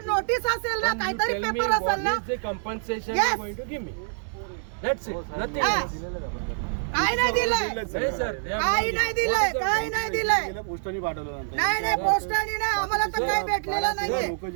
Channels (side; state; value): left; silent; 61 dB below the other